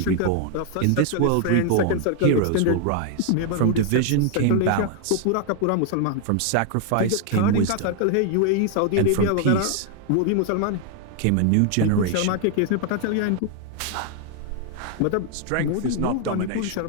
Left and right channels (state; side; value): different; both; correlation 0.00